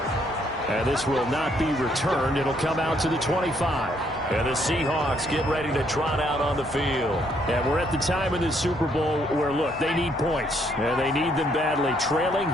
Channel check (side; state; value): both; normal; correlation 0.70